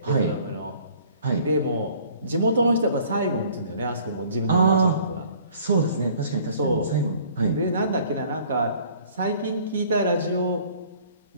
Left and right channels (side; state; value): both; inverted; correlation -0.54